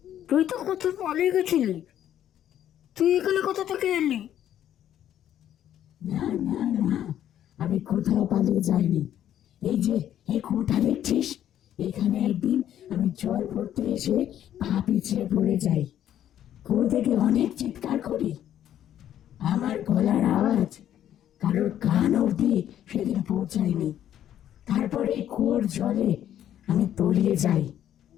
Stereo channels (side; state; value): right; quieter; 11.0 dB